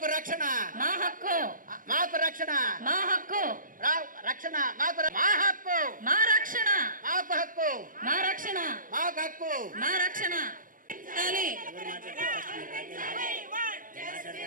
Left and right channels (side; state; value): left; late; 0.40 ms